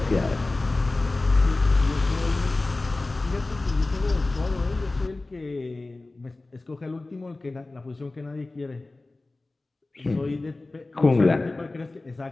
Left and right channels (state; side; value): quieter; right; 3.1 dB